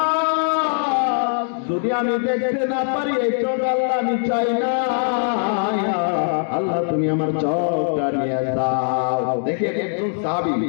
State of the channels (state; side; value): silent; right; digital silence